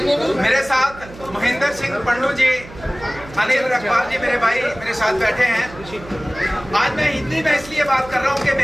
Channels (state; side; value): noise; right; hum, 17 dB below the sound